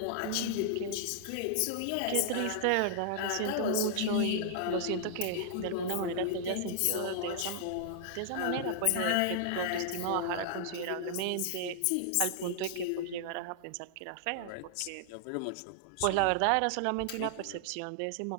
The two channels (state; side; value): different; both; correlation -0.01